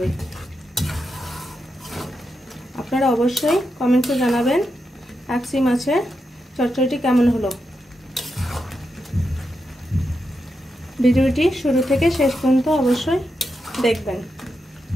আপনারা অবশ্যই কমেন্টে জানাবেন কাকসি মাছের চচ্চড়িটি কেমন হলো। ভিডিওটি শুরু থেকে শেষ পর্যন্ত অবশ্যই দেখবেন।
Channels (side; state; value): both; normal; correlation 0.86